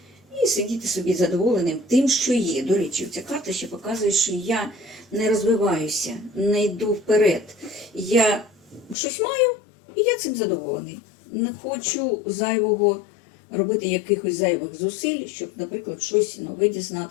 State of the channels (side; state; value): right; drops out; at 9.0 s